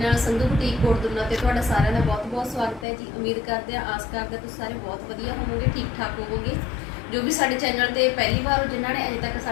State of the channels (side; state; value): right; drops out; at 2.9 s